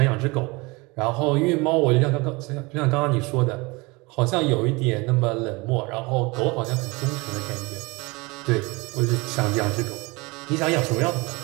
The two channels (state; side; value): quieter; left; 25.1 dB